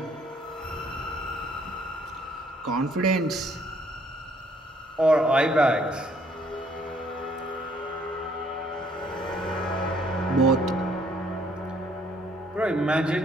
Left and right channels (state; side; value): normal; both; correlation 0.64